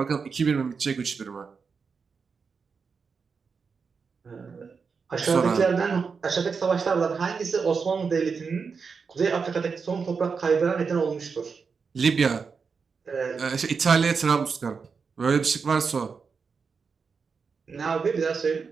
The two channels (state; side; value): quieter; left; 5.4 dB